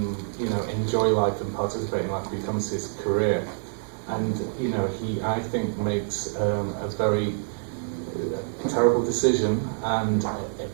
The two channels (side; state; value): left; silent; digital silence